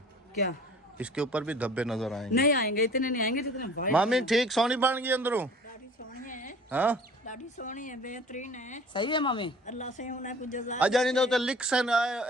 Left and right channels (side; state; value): both; normal; correlation 0.47